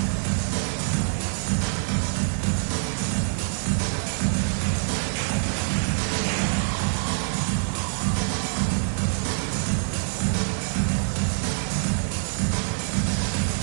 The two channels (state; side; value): silent; left; 59 dB below the other